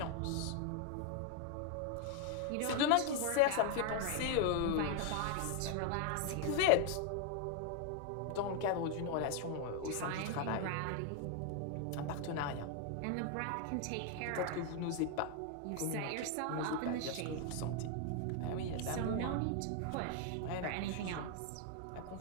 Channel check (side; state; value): both; different; correlation 0.00